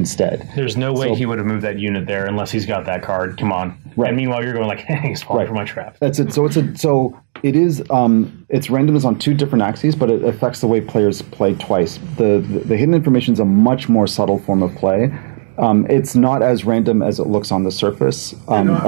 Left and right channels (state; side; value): silent; left; digital silence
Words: There's no way he would have moved that unit there unless he's got that card. Come on. Right. And meanwhile, you're going like, hey, he's falling for my trap. That's it. So it is its randomness on 2 different axes, but it affects the way players play twice. The hidden information is a much more subtle form of play. It's not as random as it looks on the surface,